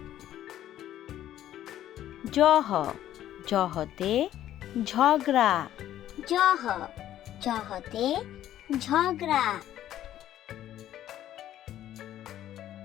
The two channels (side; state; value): right; quieter; 12.2 dB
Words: জহ জহতে ঝগড়া জহ জহতে ঝগড়া